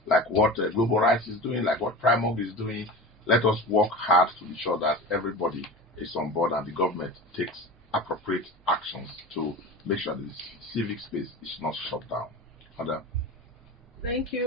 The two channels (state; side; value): normal; both; correlation 0.31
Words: like what Global Rights is doing, like what PRIMORG is doing. Let us work hard to be sure that everybody is on board and the government takes appropriate actions to make sure that the civic space is not shut down. Thank